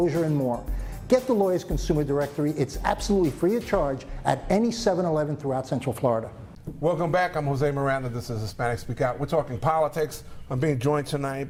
and more. Get the Lawyers Consumer Directory. It's absolutely free of charge at any 7-Eleven throughout Central Florida. Welcome back. I'm Jose Miranda. This is Hispanic Speak Out. We're talking politics. I'm being joined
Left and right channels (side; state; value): both; identical; correlation 1.00